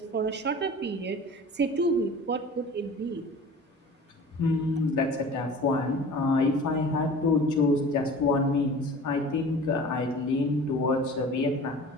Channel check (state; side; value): normal; both; correlation 0.41